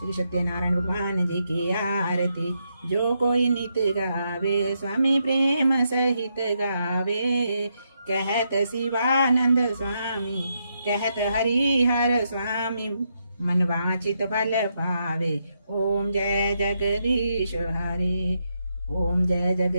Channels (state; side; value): inverted; both; correlation -0.80